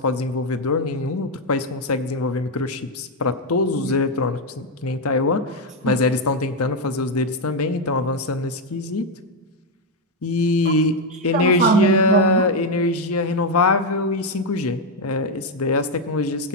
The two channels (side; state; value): both; normal; correlation 0.04